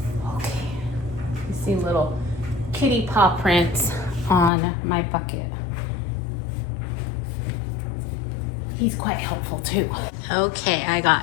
Okay. You see little kitty paw prints on my bucket. He's quite helpful too. Okay, I got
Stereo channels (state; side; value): drops out; right; at 4.5 s